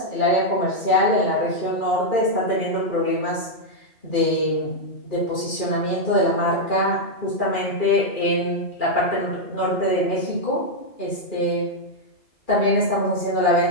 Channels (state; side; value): late; right; 2.4 ms